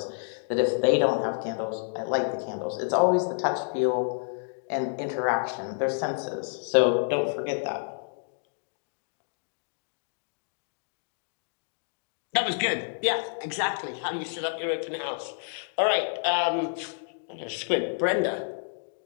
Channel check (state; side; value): silent; right; digital silence